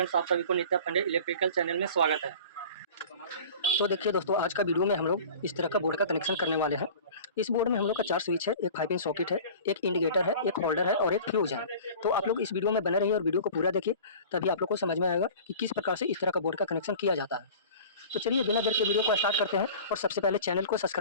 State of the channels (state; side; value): inverted; both; correlation -0.41